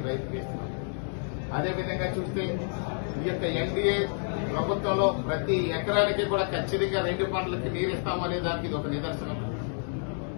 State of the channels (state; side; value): silent; right; 58 dB below the other